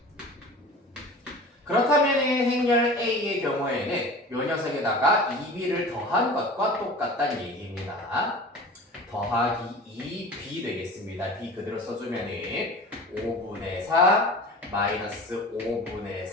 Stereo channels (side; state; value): both; normal; correlation 0.38